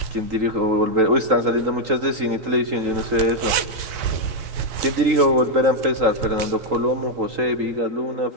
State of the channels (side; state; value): left; late; 4.3 ms